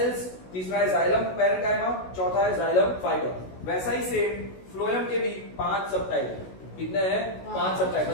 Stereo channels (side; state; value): right; late; 16 ms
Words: तीसरा है जाइलम पैरेनकाइमा, चौथा है जाइलम फाइबर। वैसा ही सेम फ्लोएम के भी 5 सब टाइप है। कितने हैं, 5 सब टाइप,